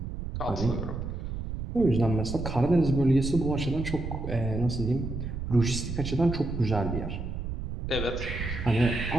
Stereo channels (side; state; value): right; noise; rumble, 5 dB below the sound